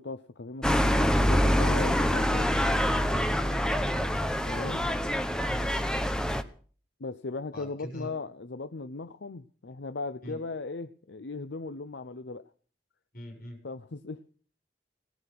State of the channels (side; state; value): both; normal; correlation 0.84